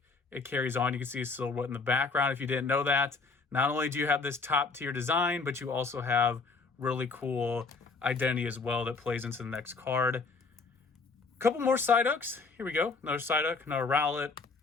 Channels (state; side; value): quieter; right; 4.4 dB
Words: it carries on. You can see a silhouette in the background if you didn't know that. Not only do you have this top tier design, but you also have really cool identity as well that plays into the next card. A couple more Psyducks. Here we go. Another Psyduck, another Rowlet.